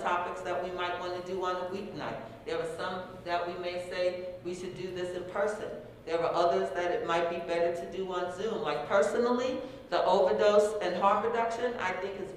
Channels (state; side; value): identical; both; correlation 1.00